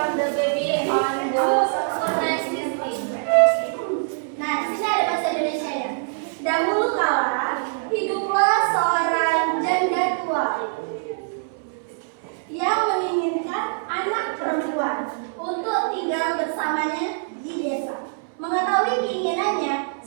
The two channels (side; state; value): left; silent; 63 dB below the other